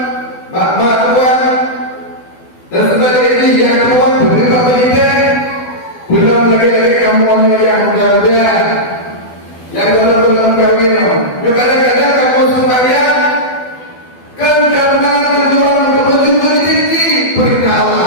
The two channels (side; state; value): right; late; 12 ms